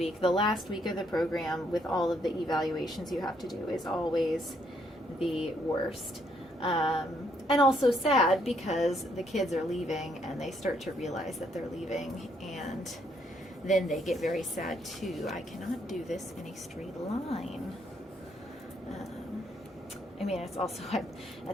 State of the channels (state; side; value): normal; both; correlation 0.71